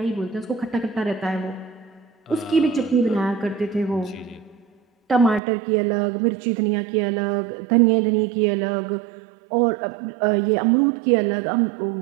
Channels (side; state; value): left; drops out; at 5.4 s